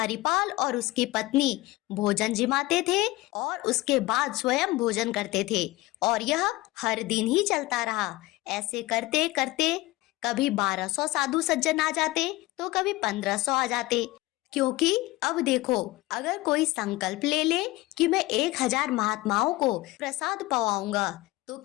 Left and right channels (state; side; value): quieter; right; 19.5 dB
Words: और उसकी पत्नी भोजन जिमाते थे और उसके बाद स्वयं भोजन करते थे। और यह हर दिन ही चलता रहा। ऐसे करते करते कभी 1200 साधु सज्जन आ जाते तो कभी 1500 आ जाते। क्योंकि अब देखो, अगर कोई संकल्प ले ले कि मैं 1000 महात्माओं को प्रसाद पवाऊंगा, तो